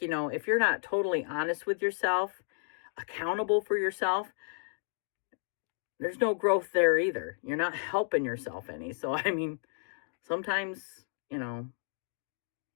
if you're not totally honest with yourself, accountable for yourself, there's no growth there either. You're not helping yourself any. So, I mean, sometimes,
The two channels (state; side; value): silent; right; digital silence